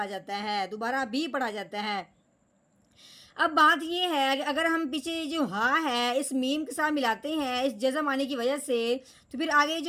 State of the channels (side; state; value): both; identical; correlation 1.00